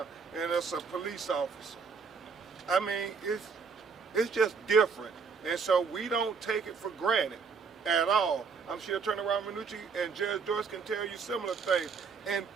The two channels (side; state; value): left; quieter; 5.4 dB